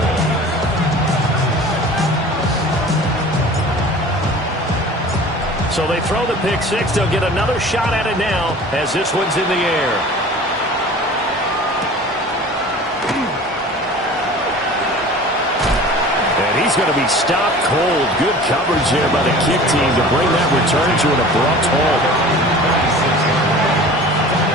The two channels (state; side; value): normal; both; correlation 0.42